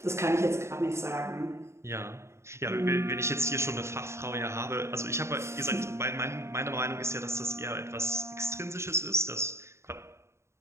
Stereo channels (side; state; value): left; late; 0.13 ms